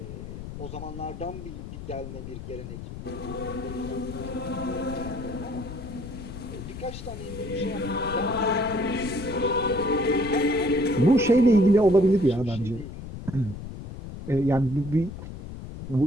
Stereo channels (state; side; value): noise; left; rumble, 10 dB below the sound